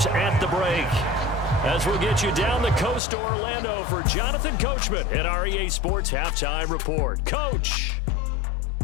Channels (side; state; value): right; drops out; at 3.0 s